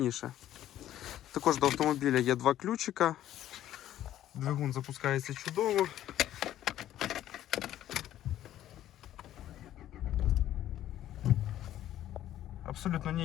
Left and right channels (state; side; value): quieter; right; 12.5 dB